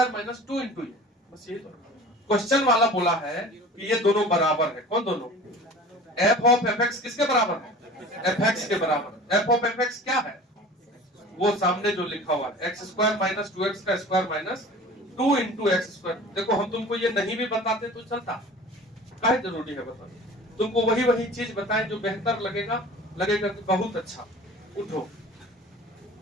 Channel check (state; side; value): normal; both; correlation 0.41